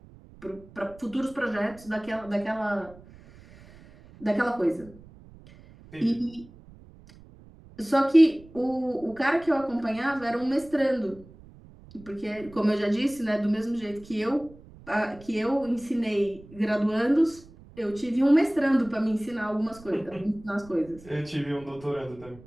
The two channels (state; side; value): noise; right; rumble, 22 dB below the sound